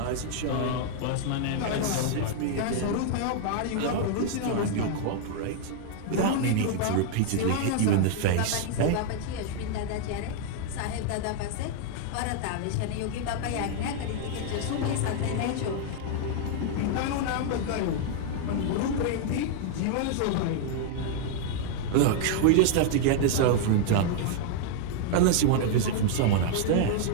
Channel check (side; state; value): both; different; correlation 0.00